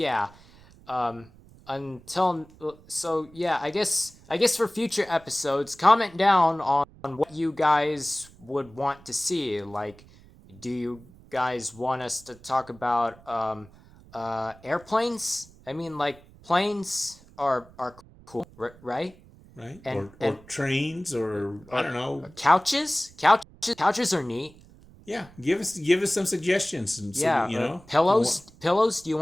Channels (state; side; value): noise; right; rumble, 24 dB below the sound